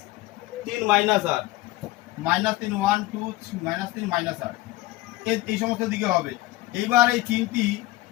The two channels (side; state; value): right; quieter; 18.2 dB